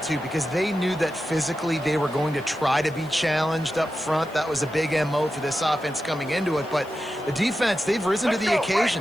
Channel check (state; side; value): noise; left; hiss, 26 dB below the sound